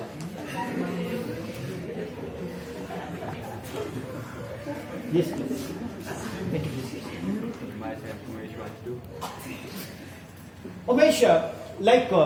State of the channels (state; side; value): identical; both; correlation 1.00